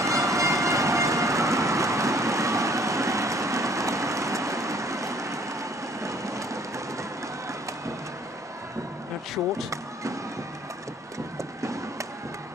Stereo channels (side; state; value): both; normal; correlation 0.59